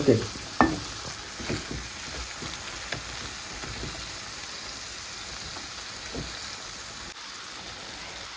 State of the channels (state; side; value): identical; both; correlation 1.00